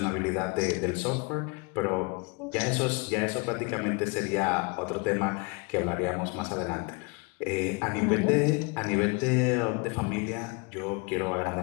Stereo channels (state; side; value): quieter; right; 30.2 dB